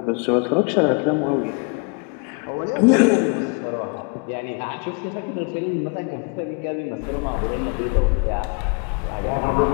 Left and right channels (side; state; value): right; quieter; 35.8 dB